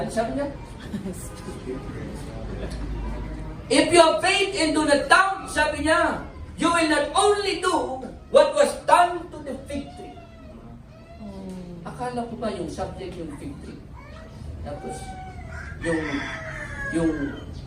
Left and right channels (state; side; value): identical; both; correlation 1.00